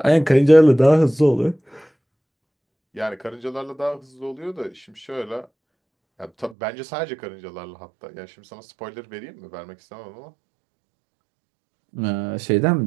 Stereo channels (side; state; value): left; drops out; at 6.6 s